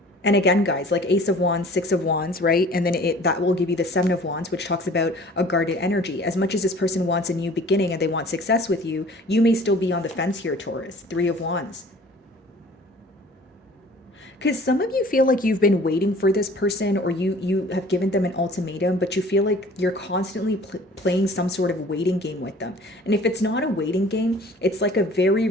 And again, guys, like Ace of Wands, Six of Wands, right? And then that will give you the Seven of Wands, which talks about a guarded energy. As much as this person wants a new beginning and they want success with you, you may still be on the fence here, Taurus. Three of Wands. Because some of you feel like you've been waiting for this person, or you have given them an ultimatum, but you feel like you're constantly playing some sort of waiting game with them. And if it's not a waiting game, it's like a very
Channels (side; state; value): both; normal; correlation 0.49